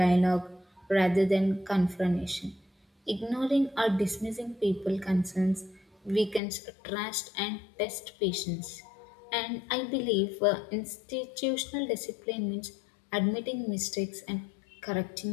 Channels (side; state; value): right; drops out; at 6.4 s